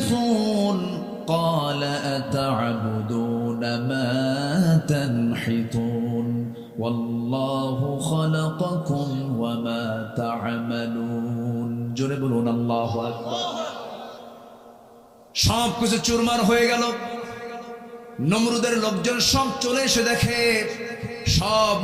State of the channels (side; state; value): both; identical; correlation 1.00